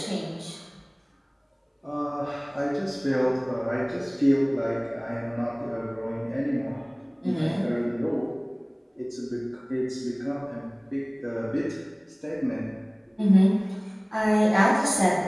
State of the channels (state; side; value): identical; both; correlation 1.00